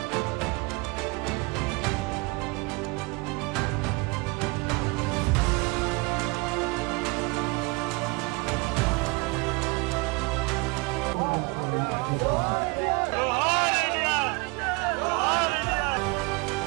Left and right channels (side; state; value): left; quieter; 27.0 dB